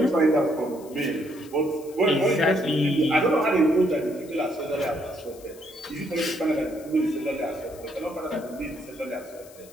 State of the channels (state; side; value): noise; left; hiss, 22 dB below the sound